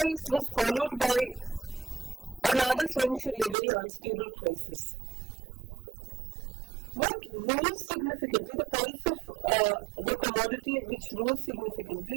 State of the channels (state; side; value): drops out; left; at 3.6 s